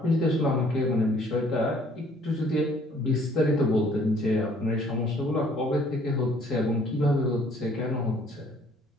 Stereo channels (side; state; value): both; normal; correlation 0.59